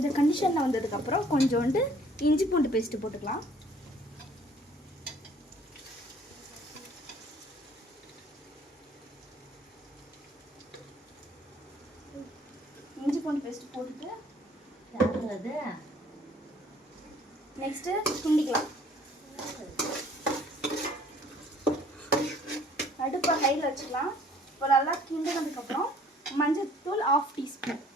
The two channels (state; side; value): normal; both; correlation 0.57